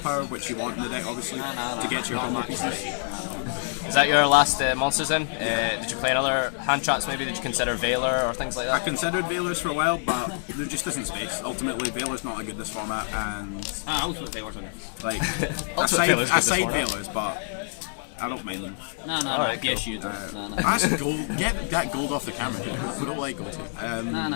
which you want in the deck obviously, to get your combo pieces. Is that your last monsters then? Did you play another hand traps maybe? Did you consider Veiler or things like I that? considered Veilers for a while, but there just isn't space. Ultimately, Veiler's not a good this format, and Ultimate Veilers on it. like Ultimate Veiler's good I this side format. Veilers, but I don't mind them. No, Alright, yes cool. you do. No. That's gold. Get that gold off the camera. We don't like gold. No,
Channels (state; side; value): silent; right; 61 dB below the other